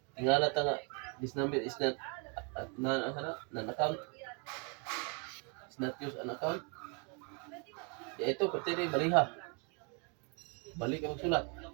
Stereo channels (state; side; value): quieter; left; 35.0 dB